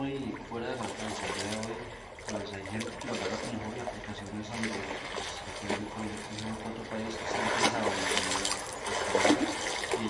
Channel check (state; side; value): identical; both; correlation 1.00